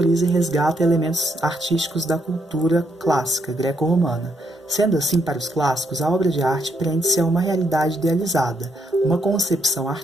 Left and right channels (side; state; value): both; normal; correlation 0.75